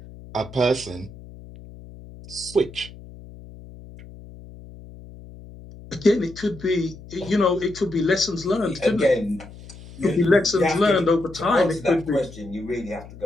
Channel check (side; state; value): left; noise; hum, 17 dB below the sound